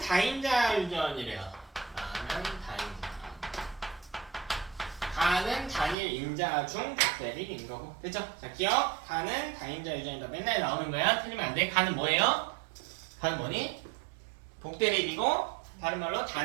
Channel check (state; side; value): drops out; left; at 6.0 s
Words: 다인자 유전이래요. 나는 다인자. 다는 단일 인자 중 독대립인 거고. 됐죠? 자, 기억. 다는 다인자 유전이다. 맨날 나오는 거야. 틀리면 안 돼. 가는 뭐예요? 가는 뭐니? 독대립이고 다른 말로